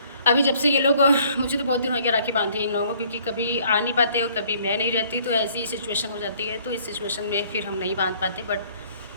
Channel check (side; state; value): both; inverted; correlation -0.59